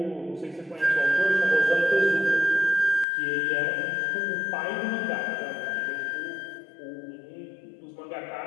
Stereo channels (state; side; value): drops out; right; at 3.1 s